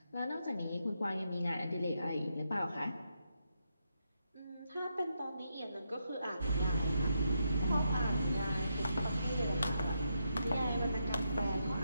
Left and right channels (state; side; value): inverted; both; correlation -0.81